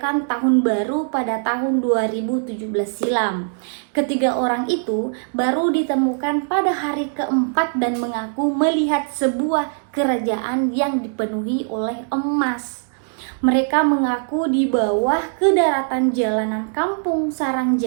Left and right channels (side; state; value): left; silent; digital silence